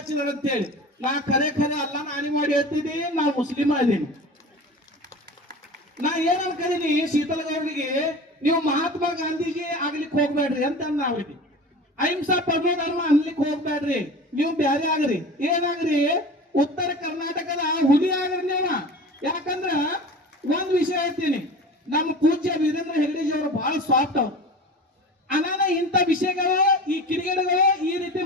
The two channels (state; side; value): normal; both; correlation 0.35